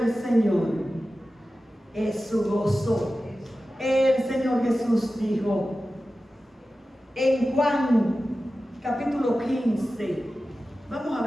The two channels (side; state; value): both; normal; correlation 0.94